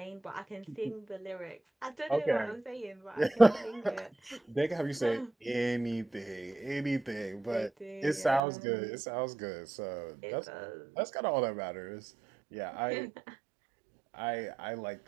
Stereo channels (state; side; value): drops out; left; at 8.4 s